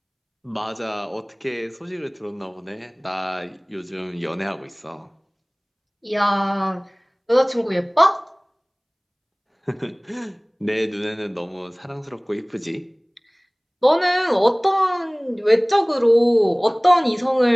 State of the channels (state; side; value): identical; both; correlation 1.00